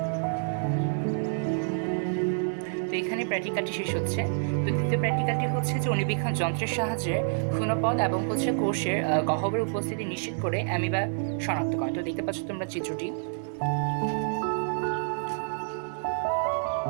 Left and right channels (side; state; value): left; silent; 59 dB below the other